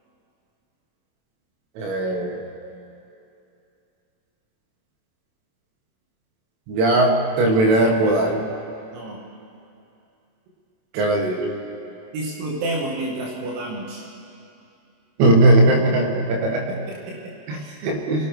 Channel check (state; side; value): late; left; 27 ms